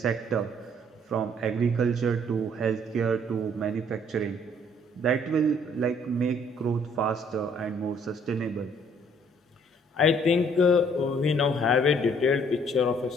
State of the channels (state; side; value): normal; both; correlation 0.62